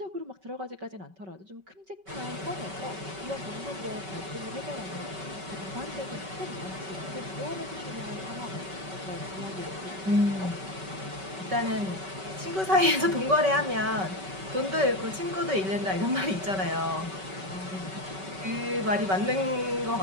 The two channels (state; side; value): late; left; 5.2 ms